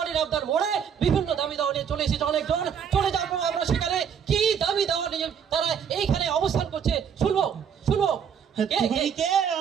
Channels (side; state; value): left; quieter; 7.7 dB